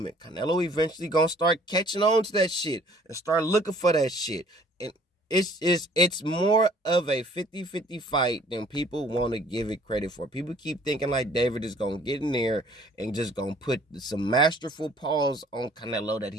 Canelo eventually going to start catching on to that shit and start looking for that shit. And it's more of a 50-50 fight than people want to give it credit for. People keep thinking like David is going to get in there and just going to put some masterful paws on Canelo that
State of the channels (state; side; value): normal; both; correlation 0.56